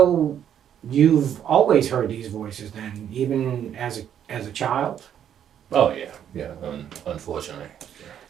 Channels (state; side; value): quieter; left; 9.5 dB